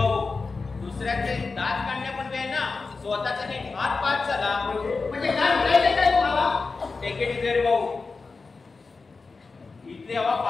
दुसऱ्याचे दात काढण्यापूर्वी वेळ ना स्वतःचा नीट हात पाच झाला. म्हणजे काय म्हणायचं काय तुम्हाला? टेकेट इथे भाऊ, इथली हवा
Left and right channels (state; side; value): quieter; right; 4.2 dB